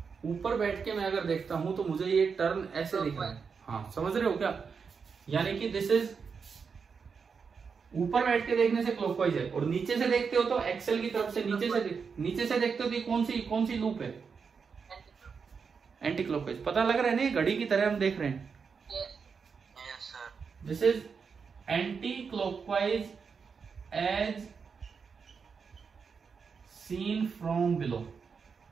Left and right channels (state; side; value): quieter; left; 5.7 dB